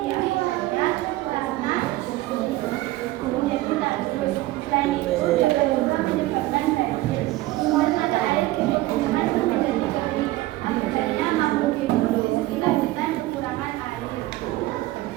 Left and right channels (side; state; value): left; quieter; 17.6 dB